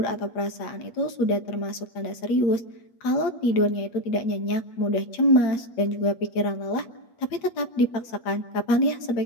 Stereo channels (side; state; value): right; late; 8.5 ms